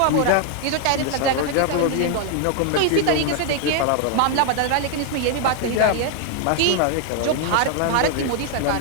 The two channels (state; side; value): different; both; correlation 0.00